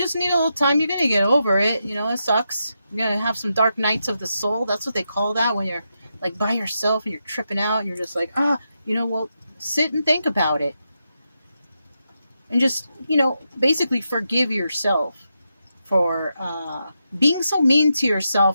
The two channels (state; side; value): inverted; both; correlation -0.85